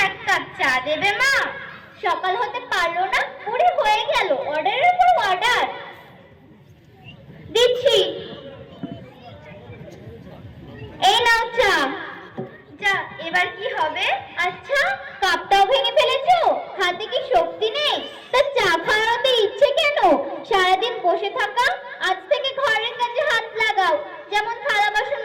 এক কাপ চা দেবে মা? সকাল হতে পারলো না, পুরি হয়ে গেল, অর্ডারের পর অর্ডার। দিচ্ছি, এই নাও চা। যা, এবার কি হবে? আচ্ছা, কাপটাও ভেঙে ফেলেছো, হাতে কি শক্তি নেই? তা চা খাওয়াতে ইচ্ছে কেন? সারাদিন বসে থাকা, আজ থেকে ঘরের কাজে হাত লাগাও, যেমন থালা বাসন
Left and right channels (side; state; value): both; identical; correlation 1.00